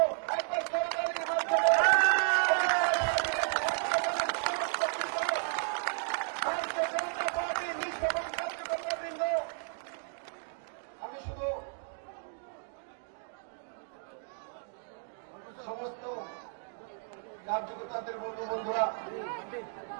একবার সরকারের মাধ্যমে ভারতীয় জনতা পার্টির নিষ্ঠাবান কার্যকর্তাবৃন্দ, আমি শুধু সমস্ত কার্যকর্তাদের বলবো, বন্ধুরা,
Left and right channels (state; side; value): silent; left; 56 dB below the other